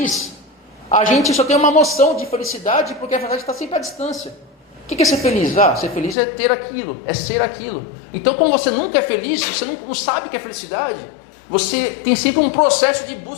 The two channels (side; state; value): right; drops out; at 6.2 s